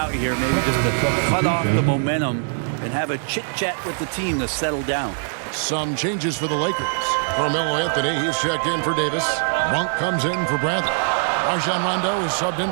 here, maybe just to cut off the momentum and have a chit-chat with the team to settle down. Some changes for the Lakers. Carmelo Anthony, he's checked in for Davis. Monk comes in for Bradley. Rajon Rondo is subbed in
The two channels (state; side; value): silent; left; 64 dB below the other